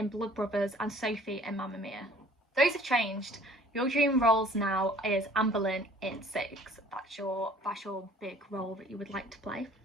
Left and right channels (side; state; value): both; normal; correlation 0.53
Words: Blood Brothers and Sophie in Mamma Mia. Those have changed. Your dream roles now is Anne Boleyn in Six. That's your big role that you would like to play.